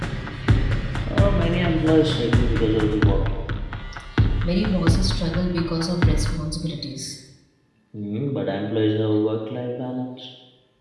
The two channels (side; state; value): both; identical; correlation 1.00